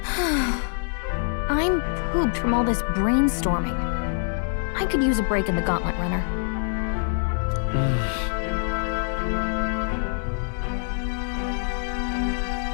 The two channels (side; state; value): right; silent; digital silence